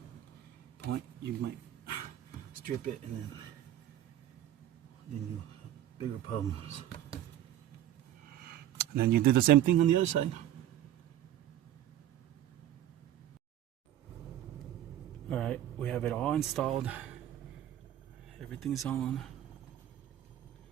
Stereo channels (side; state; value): left; quieter; 12.0 dB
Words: point. You might strip it and then you have bigger problems. And then you do the same thing on the other side. Alright, we have it all installed. Everything's on.